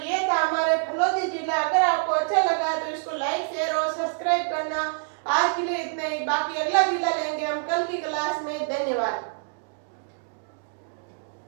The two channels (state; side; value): silent; left; digital silence